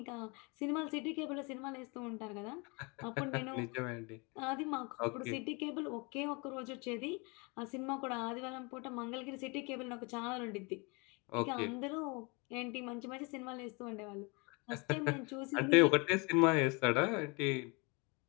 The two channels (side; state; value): right; quieter; 29.4 dB